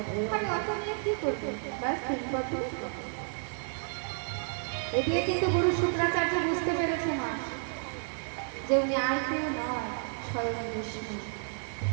আমি অত নিয়ে কি করবো, ব্যাস 3 পদ ভূমি। এদিকে কিন্তু গুরু শুক্রাচার্য বুঝতে পেরেছে মা যে উনি আর কেউ নয়, স্বয়ং বিষ্ণু।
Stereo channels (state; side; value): silent; left; 57 dB below the other